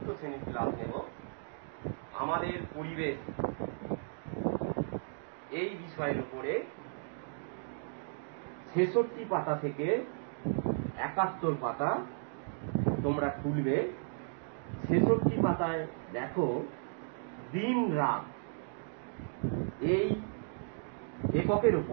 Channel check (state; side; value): silent; left; digital silence